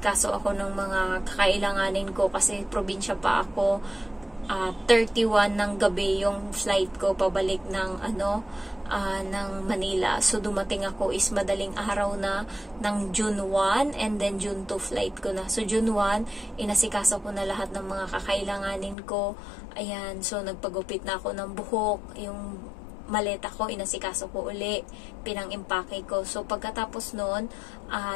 ako ng mga kakailanganin ko kasi probinsya pa ako. 31 ng gabi yung flight ko pabalik ng ng Manila. So, dumating ako is madaling araw na ng June 1, and then June 2 flight ko na. So, June 1, inasikaso ko na lahat ng mga kakailanganin ko. Ayan, so nagpagupit na ako ng buhok. Yung maleta ko, inasikaso ko uli. Pinang-impake ko. So, pagkatapos nun,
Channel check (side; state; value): right; drops out; at 18.9 s